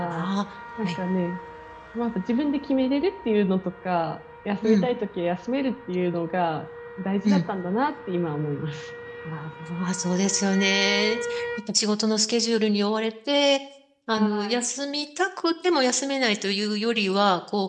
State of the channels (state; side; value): identical; both; correlation 1.00